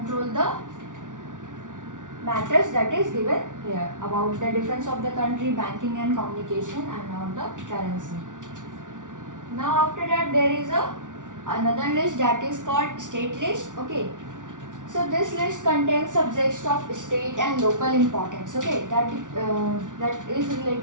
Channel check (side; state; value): left; late; 0.87 ms